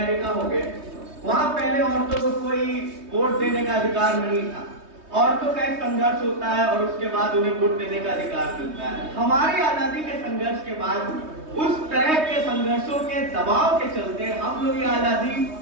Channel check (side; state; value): left; late; 3.2 ms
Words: हो गए, वहां पहले औरतों को कोई वोट देने का अधिकार नहीं था। औरतों का एक संघर्ष होता है और उसके बाद उन्हें वोट देने का अधिकार मिलता है। हमारी आजादी के संघर्ष के बाद उस तरह के संघर्षों के दबाव के चलते हम लोग ये